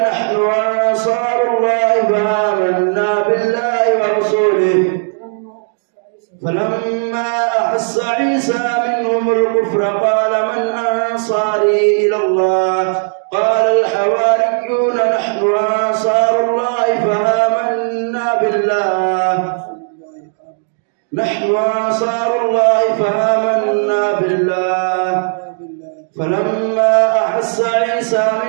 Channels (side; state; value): left; silent; digital silence